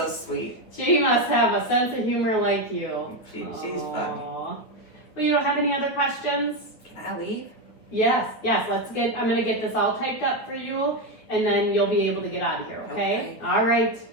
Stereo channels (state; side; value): late; right; 9.7 ms